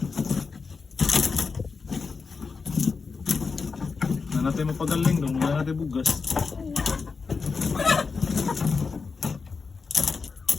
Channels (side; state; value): right; quieter; 4.8 dB